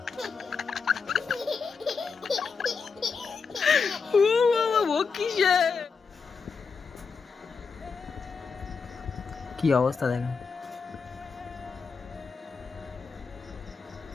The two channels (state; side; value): quieter; right; 5.3 dB